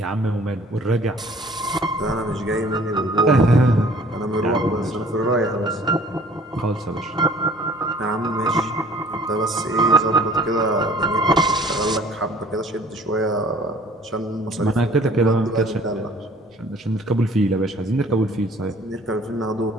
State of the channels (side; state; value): both; normal; correlation 0.53